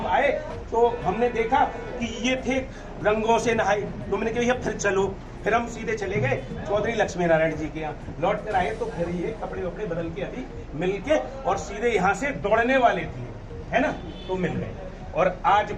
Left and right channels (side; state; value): both; identical; correlation 1.00